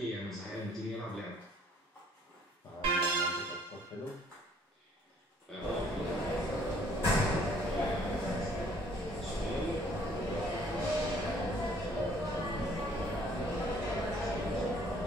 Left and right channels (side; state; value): both; normal; correlation 0.60